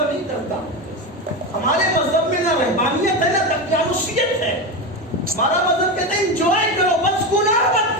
نہیں کرتا. ہمارے مذہب میں نہ رہبانیت ہے نہ دقیانوسیت ہے. ہمارا مذہب کہتا ہے انجوائے کرو, بس گناہ مت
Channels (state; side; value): normal; both; correlation 0.17